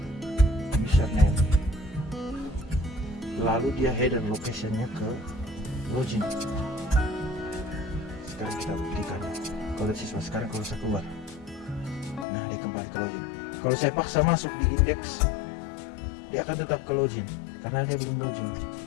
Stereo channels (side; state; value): right; drops out; at 12.2 s